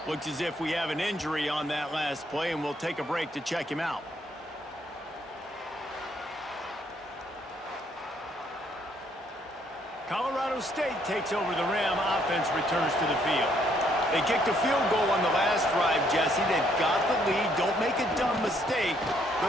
Looks as if we have an injury on that last play, and we'll take a break to check him out. Colorado State takes over the Ram. Offense returns to the field. They kicked a field goal on the last drive, Jesse. They've got the lead. Don't make a dumb mistake, but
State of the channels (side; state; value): both; normal; correlation 0.69